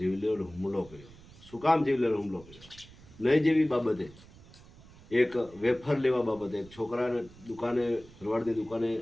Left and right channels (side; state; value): right; noise; rumble, 22 dB below the sound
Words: હુમલો કર્યો. શું કામ જીવલેણ હુમલો કર્યો? નહીં જેવી બાબતે, એક વેફર લેવા બાબતે એક છોકરાને દુકાને, ભરવાડની દુકાને